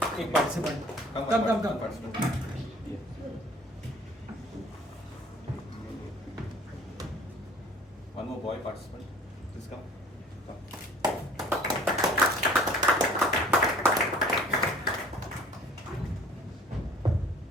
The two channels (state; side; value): normal; both; correlation 0.51